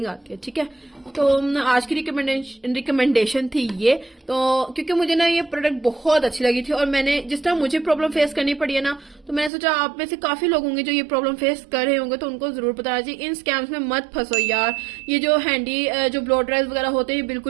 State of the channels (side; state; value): left; drops out; at 9.5 s